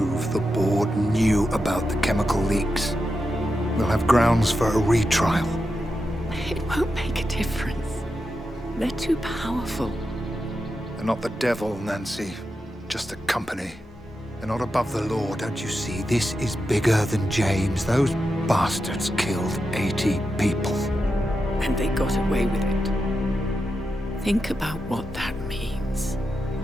the board knew about the chemical leaks. We'll have grounds for a retrial. It won't make a difference. They're too powerful. They're not the devil, Nancy. Just a company. They're not above the law, don't you see? This is bigger than James. Those bastards killed 80 people. And they got away with it. Think about what that means.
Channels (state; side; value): normal; both; correlation 0.88